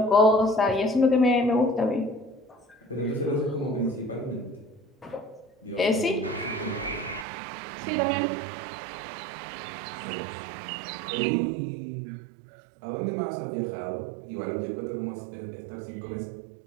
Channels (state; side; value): drops out; left; at 7.2 s